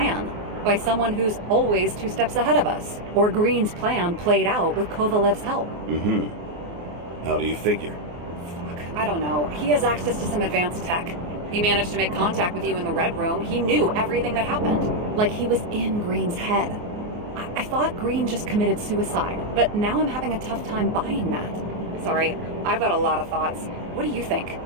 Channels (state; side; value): late; left; 34 ms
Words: By someone who's always 2 steps ahead of us. Or Green's plan played out with Kovalev's help. How do you figure? Fuck, I don't know. He has access to some advanced tech. He managed to make contact with you in the Red Room. He knew everything that happened. Like he was in Green's head. I thought Green just committed suicide, but now I'm having a tough time buying that. Sorry, I've got a lot of thoughts. What do you think?